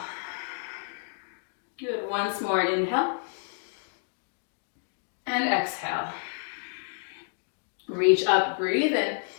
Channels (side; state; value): right; silent; digital silence